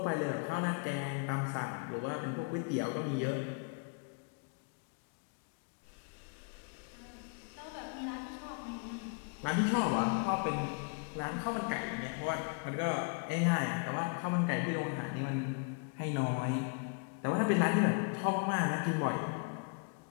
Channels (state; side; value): quieter; right; 35.7 dB